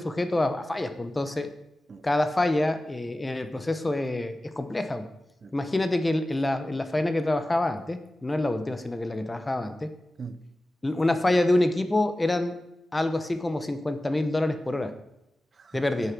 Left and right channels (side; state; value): both; normal; correlation 0.96